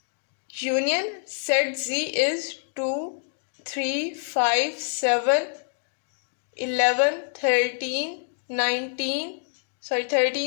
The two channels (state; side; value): silent; right; digital silence